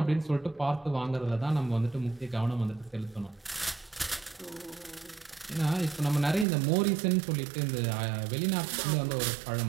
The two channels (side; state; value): left; drops out; at 6.5 s